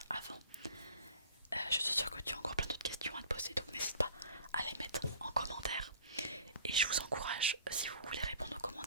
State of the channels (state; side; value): inverted; both; correlation -0.47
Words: avant. Je suis sûre que tu as encore plein d'autres questions à te poser, donc n'hésite pas à les mettre en commentaire. Et je vous encourage, si vous voulez répondre aux